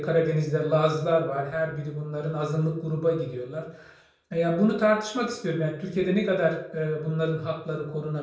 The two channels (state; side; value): identical; both; correlation 1.00